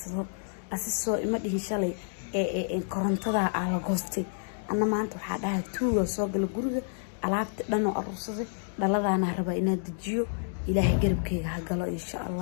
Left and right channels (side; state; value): right; silent; digital silence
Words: asisoo ima dhihin shalay korontada aan la goostay anna maanta waxa dhahay tuuga soo gal guriga alaabta dhan oo arursaday dhaladaana rabaa inaan dejiyo ilaahay garabkayga ha galo insha